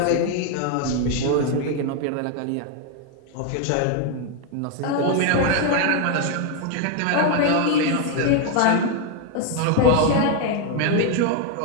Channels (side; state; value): both; different; correlation 0.01